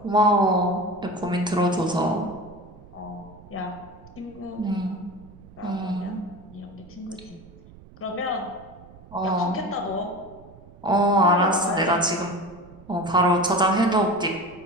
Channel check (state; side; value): noise; right; rumble, 21 dB below the sound